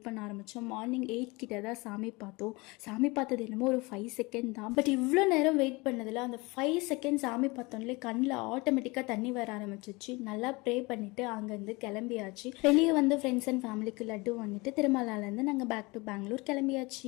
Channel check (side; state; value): right; quieter; 25.0 dB